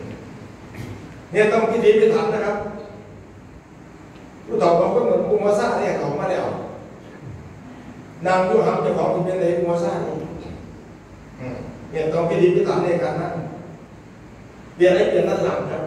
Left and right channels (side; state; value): both; identical; correlation 1.00